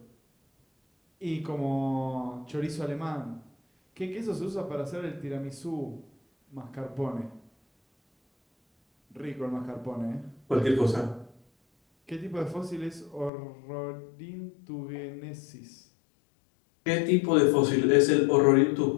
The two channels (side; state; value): right; drops out; at 13.3 s